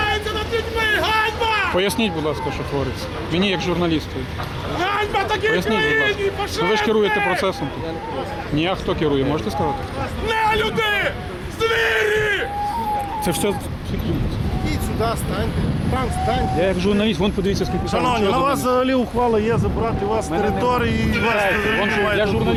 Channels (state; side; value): identical; both; correlation 1.00